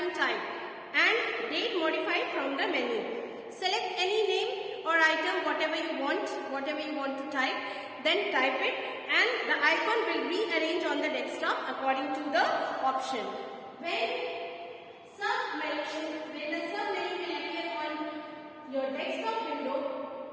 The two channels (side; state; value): both; identical; correlation 1.00